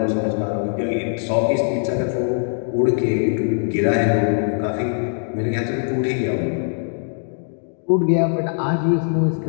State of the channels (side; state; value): right; silent; 65 dB below the other